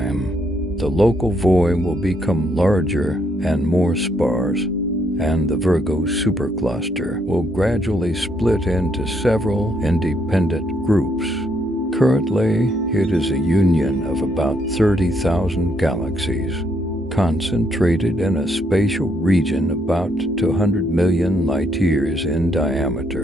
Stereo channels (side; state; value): both; normal; correlation 0.73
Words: the local void will become larger and more sparse, and the Virgo supercluster will gradually split into several independent groups. Currently, it is a union of about 30,000 galaxies, concentrated in a spatial region about 200 million light-years in